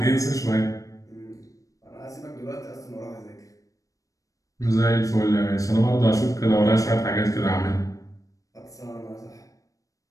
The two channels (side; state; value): right; late; 0.16 ms